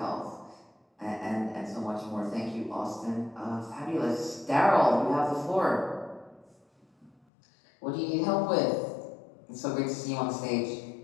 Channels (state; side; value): drops out; right; at 7.2 s